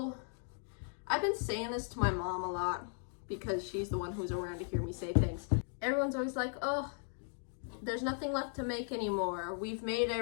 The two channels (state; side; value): silent; right; 53 dB below the other